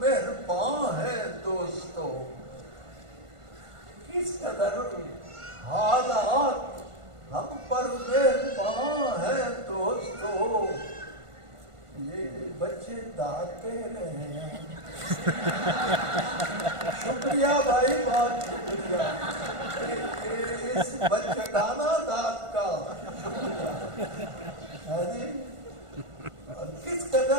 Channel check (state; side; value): late; left; 1.5 ms